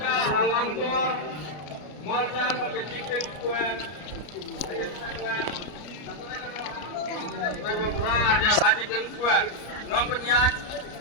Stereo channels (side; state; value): right; late; 33 ms